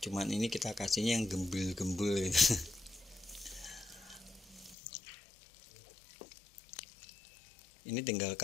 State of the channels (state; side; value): drops out; right; at 4.8 s